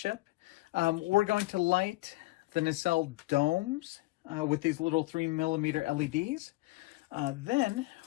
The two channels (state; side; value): quieter; right; 21.1 dB